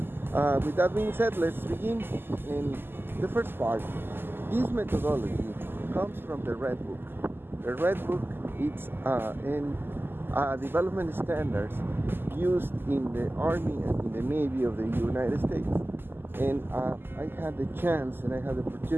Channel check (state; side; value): late; left; 0.10 ms